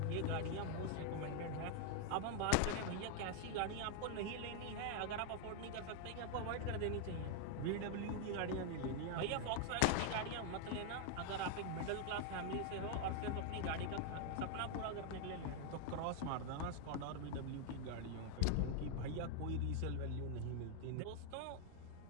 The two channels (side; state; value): both; different; correlation 0.00